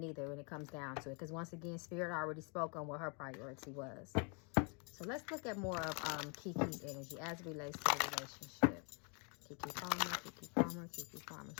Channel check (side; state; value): right; quieter; 36.1 dB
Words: either when it comes down to it. Because once again, Spirit already spoke on what her priority was. So let's look at more of Kiki's energy as it relates to the relationship. Kiki Palmer, Kiki Palmer, Kiki Palmer.